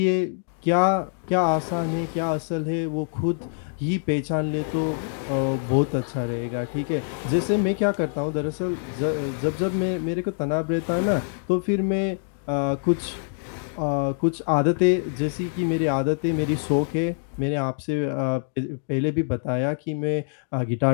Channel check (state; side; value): silent; right; digital silence